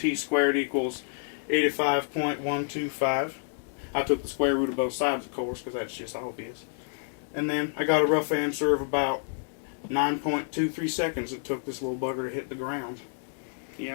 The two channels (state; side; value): silent; right; 59 dB below the other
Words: squared equals 85.125. I took the square root of both sides, of course, because that's just obvious. And then I got a rough answer of about 9.23 seconds it took this little bugger to hit the ground.